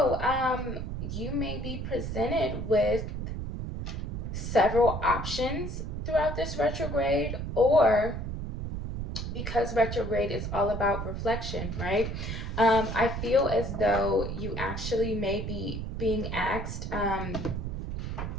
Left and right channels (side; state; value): right; noise; rumble, 4 dB below the sound